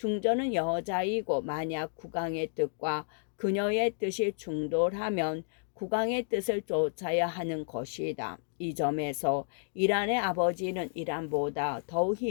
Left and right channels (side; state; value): right; silent; digital silence